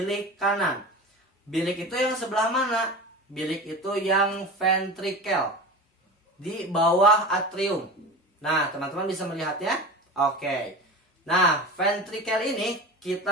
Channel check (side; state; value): both; normal; correlation 0.31